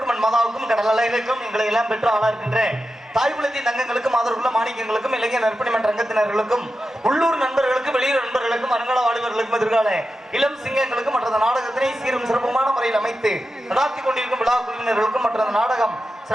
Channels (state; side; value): normal; both; correlation 0.91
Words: மண் மாதாவுக்கும் கடல் அலைகளுக்கும் எங்களை எல்லாம் பெற்று ஆளா இருக்கின்ற தாய்குலத்தின் தங்கங்களுக்கும் ஆதரவுள்ள மாணிக்கங்களுக்கும் இளைஞர் நற்பணி மன்ற ரங்கத்தினர்களுக்கும் உள்ளூர் நண்பர்களுக்கும் வெளியூர் நண்பர்களுக்கும் அருங்கால வாலிபர்களுக்கும் எதிர்கால இளம் சிங்கங்களுக்கும் மற்ற நாடகத்தினை சீரும் சிறப்புமான முறையில் அமைத்து நடாத்தி கொண்டிருக்கும் விழா குழுவினர்களுக்கும் மற்ற நாடகம்